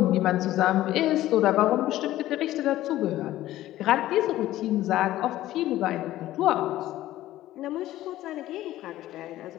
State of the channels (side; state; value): right; quieter; 14.8 dB